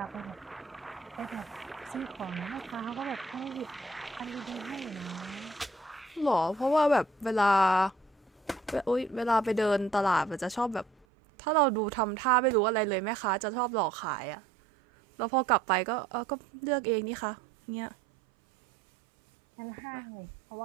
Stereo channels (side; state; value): left; drops out; at 11.1 s